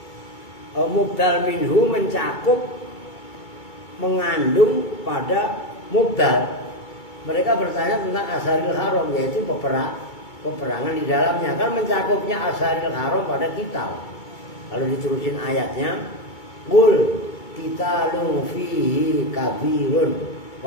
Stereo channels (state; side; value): late; right; 2.3 ms